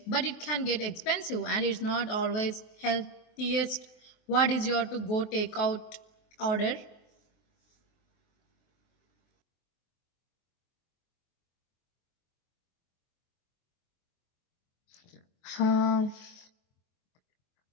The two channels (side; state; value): right; late; 23 ms